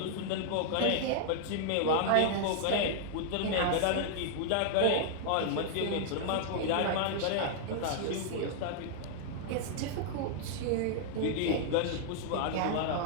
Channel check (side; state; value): both; different; correlation -0.01